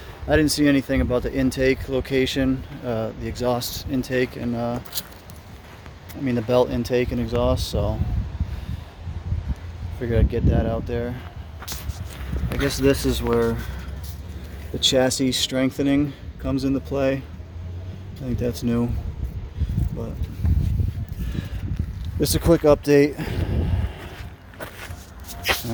didn't see anything about the intake location, the exhaust intake, and the belt intake and exhaust, so figured I'd get that out there. I guess this is where the chassis strengthening comes into play. I think that's new, but just a quick update. All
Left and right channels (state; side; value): identical; both; correlation 1.00